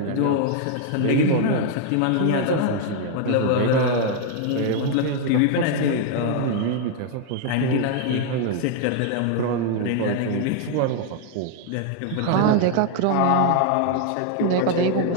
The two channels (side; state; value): both; different; correlation 0.00